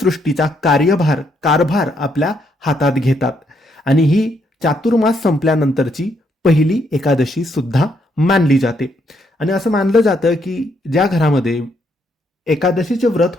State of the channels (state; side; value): normal; both; correlation 0.74